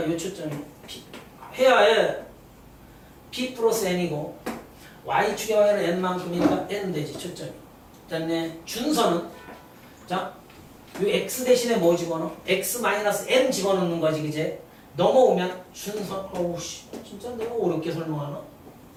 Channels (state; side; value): identical; both; correlation 1.00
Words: 이 초점이 P 해야 해. P 플러스 N이고 Y축의 방향으로 N만큼이니까 N 되지 초점이. 됐네. 준선은 자, 이 X 대신에 뭐 집어넣어? X 마이너스 N 집어넣는 거지. 그제? 넘어오면 준선 어우 씨 진짜 내가 어렵게 설명하나?